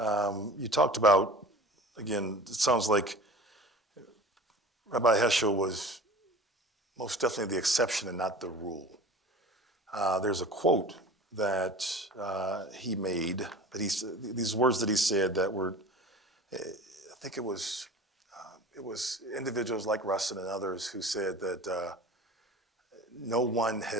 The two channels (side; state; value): both; normal; correlation 0.39